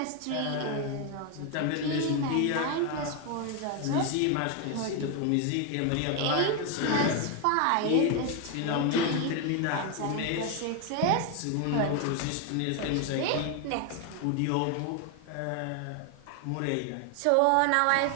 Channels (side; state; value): both; different; correlation 0.01